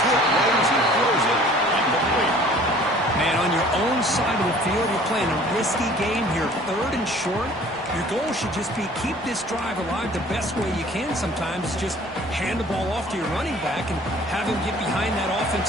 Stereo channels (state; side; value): normal; both; correlation 0.51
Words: hit low as he throws it. Incomplete. Man, on your own side of the field, you're playing a risky game here. 3rd and short. Your goal should just be keep this drive alive the best way you can sometimes. Is just hand the ball off to your running back and have him get behind that